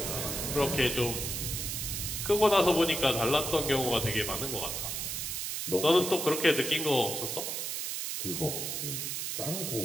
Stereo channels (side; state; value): right; noise; hiss, 3 dB below the sound